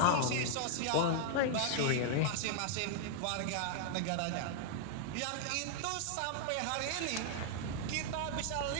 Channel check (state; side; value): different; both; correlation -0.01